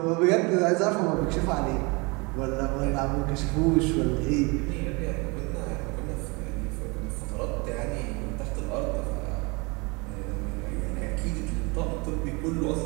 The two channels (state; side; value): quieter; left; 28.0 dB